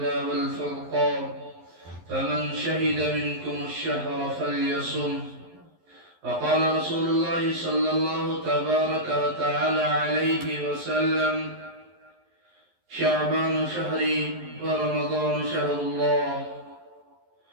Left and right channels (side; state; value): left; late; 11 ms